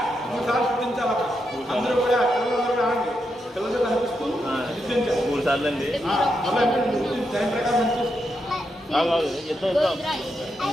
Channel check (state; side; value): normal; both; correlation 0.83